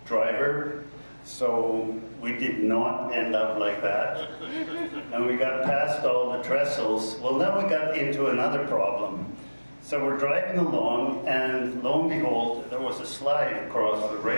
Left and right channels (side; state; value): both; inverted; correlation -1.00